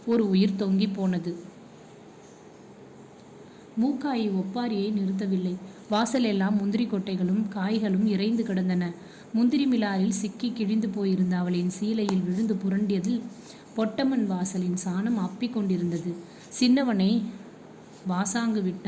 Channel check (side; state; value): both; identical; correlation 1.00